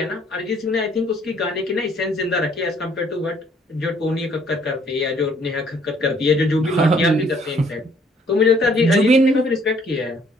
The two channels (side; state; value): both; normal; correlation 0.63